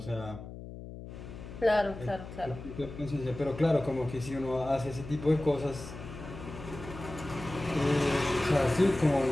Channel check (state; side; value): noise; left; hum, 12 dB below the sound